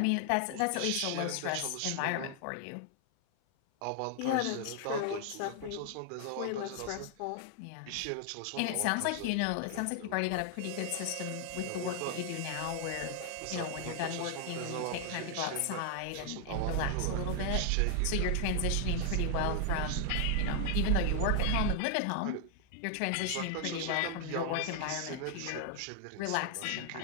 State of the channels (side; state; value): both; different; correlation 0.00